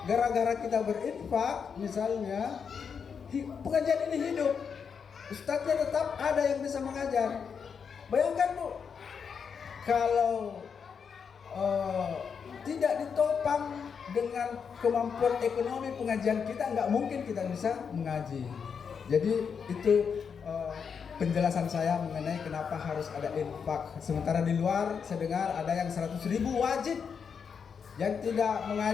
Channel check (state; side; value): quieter; right; 6.5 dB